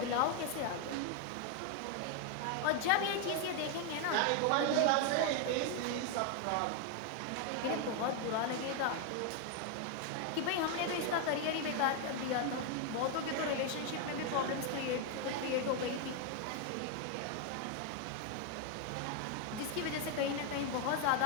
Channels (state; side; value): different; both; correlation 0.01